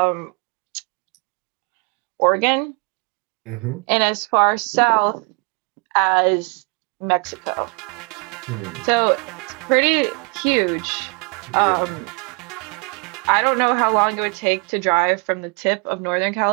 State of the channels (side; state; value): left; quieter; 32.6 dB